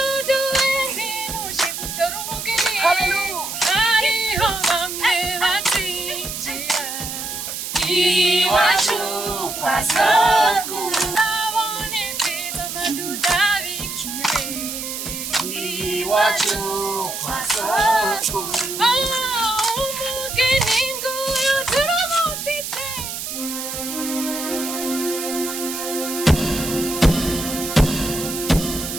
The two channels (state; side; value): noise; right; hiss, 6 dB below the sound